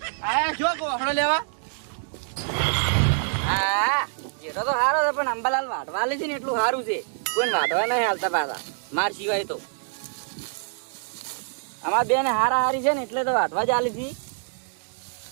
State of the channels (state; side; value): silent; left; digital silence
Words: આયા જો ઓહડો લેવા. હા, જેટલો તો સારો છે પણ અંબાલાલ વાટવા લે છે ને એટલું સારું છે. કોઈ વાટવા નહીં હાલતા પાછા માર સિવાય તો. અમાર બે ને હારા હારી છે ને એટલે તો વાટવા જ આલી છે.